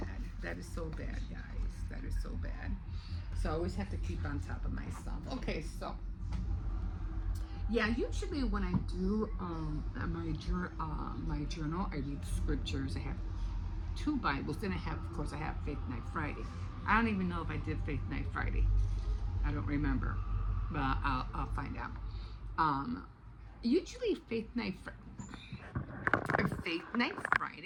That is so bad, guys. That is so bad. So I always have to keep on top of myself. Okay, so. Yeah, usually when I do my journal, I read scriptures. I have 2 Bibles. Then I have Faith Night Friday. I don't even know if I did Faith Night Friday. I don't remember, but I'll find out. Usually Faith Night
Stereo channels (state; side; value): identical; both; correlation 1.00